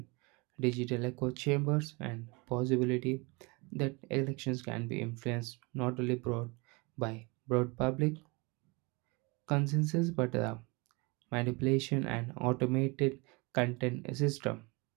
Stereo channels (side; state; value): left; quieter; 27.8 dB